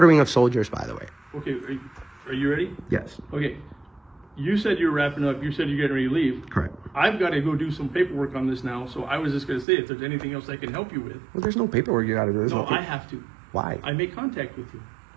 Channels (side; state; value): left; drops out; at 9.7 s